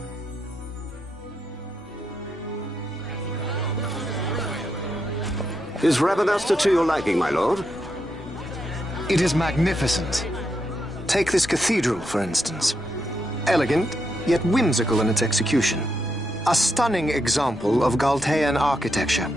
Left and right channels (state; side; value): normal; both; correlation 0.82